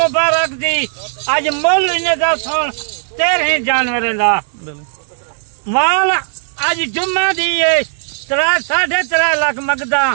दी, आज मुल इन्हें सुन 13 जानवर का माल आज जुम्मे दी 3.5 लाख मंगदा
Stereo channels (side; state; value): left; silent; 69 dB below the other